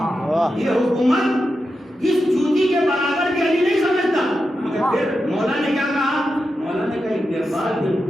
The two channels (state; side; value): normal; both; correlation 0.89